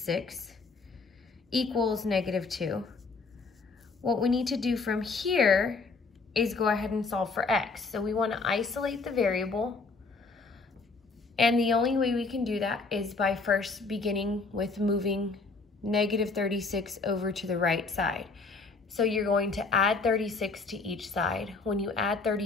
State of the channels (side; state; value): right; quieter; 4.1 dB